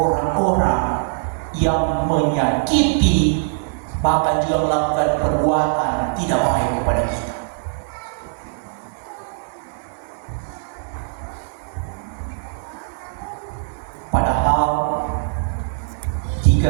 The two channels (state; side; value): silent; left; digital silence